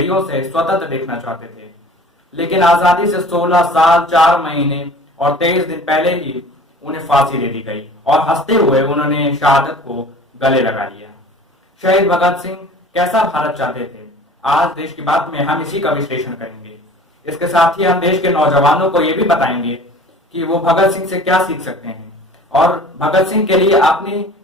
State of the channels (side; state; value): both; normal; correlation 0.45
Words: से स्वतंत्र देखना चाहते थे, लेकिन आजादी से 16 साल 4 महीने और 23 दिन पहले ही उन्हें फांसी दे दी गई और हंसते हुए उन्होंने शहादत को गले लगा लिया। शहीद भगत सिंह कैसा भारत चाहते थे, आज देश की बात में हम इसी का विश्लेषण करेंगे। इसके साथ ही हम देश के नौजवानों को यह भी बताएंगे कि वो भगत सिंह से क्या सीख सकते हैं और भगत सिंह के लिए अपनी